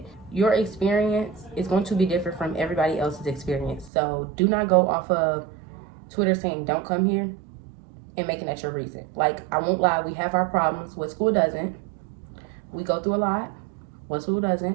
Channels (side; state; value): left; drops out; at 3.9 s